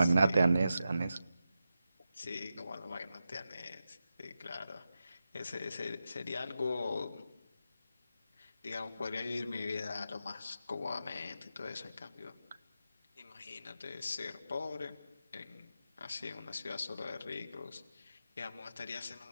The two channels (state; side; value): inverted; both; correlation -0.89